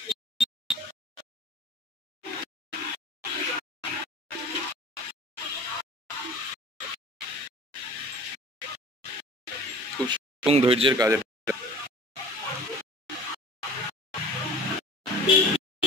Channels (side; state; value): both; normal; correlation 0.43